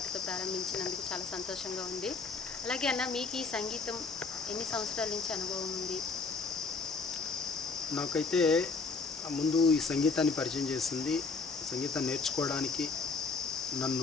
ప్రారంభించినందుకు చాలా సంతోషంగా ఉంది. అలాగే అన్న, మీకు ఈ సంగీతం ఎన్ని సంవత్సరాల నుంచి అనుభవం ఉంది? నాకైతే ముందు ఈ సంగీతాన్ని పరిచయం చేసింది, సంగీతం నేర్చుకోవడానికి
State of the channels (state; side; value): quieter; right; 4.4 dB